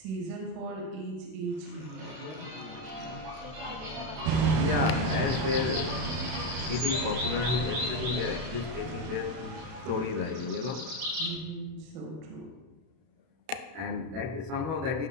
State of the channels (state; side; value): late; left; 31 ms